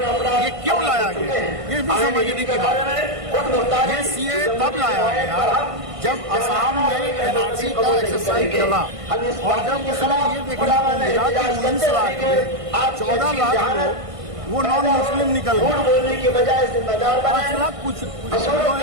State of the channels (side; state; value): left; late; 1.5 ms